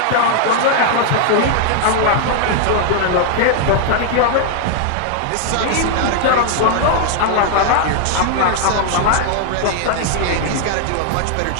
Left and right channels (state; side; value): different; both; correlation 0.00